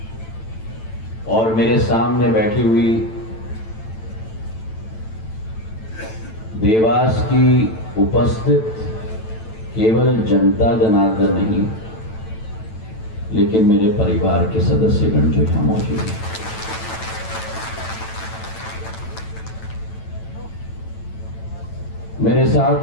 और मेरे सामने बैठी हुई देवास की उपस्थित केवल जनता जनार्दन नहीं, लेकिन मेरे परिवार के सदस्यगण जो यहां मौजूद हैं, मेरे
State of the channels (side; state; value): right; late; 9.0 ms